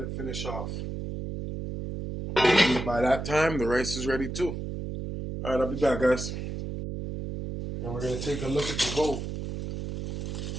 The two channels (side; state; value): right; noise; hum, 5 dB below the sound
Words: it finish off. By that time, the rice is ready too. Alright, I'll be back, guys. And we're going to take a look at the goat.